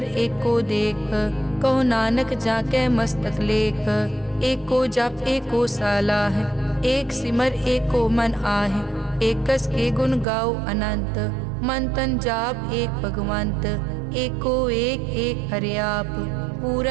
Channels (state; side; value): drops out; left; at 10.2 s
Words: एको देख, कहो नानक जाके मस्तक लेख। एको जप एको सालाह, एक सिमर एको मन आह। एकस के गुण गाओ अनंत, मन तन जाप एक भगवंत। एको एक एक हरियाप,